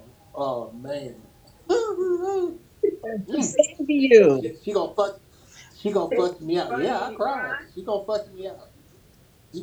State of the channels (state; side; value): identical; both; correlation 1.00